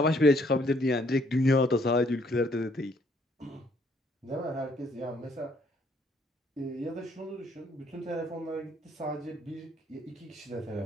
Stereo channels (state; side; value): normal; both; correlation 0.66